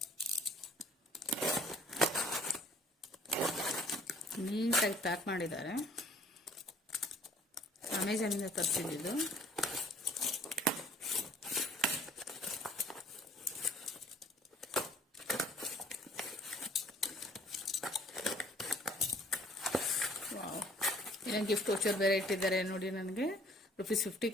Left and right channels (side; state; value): both; normal; correlation 0.56